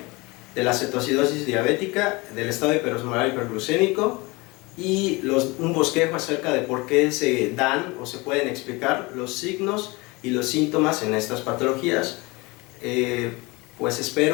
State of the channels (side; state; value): right; quieter; 24.7 dB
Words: de la cetoacidosis diabética, del estado hiperosmolar hiperglucémico y un bosquejo acerca de por qué se dan o se pueden explicar los signos y los síntomas en estas patologías. Pues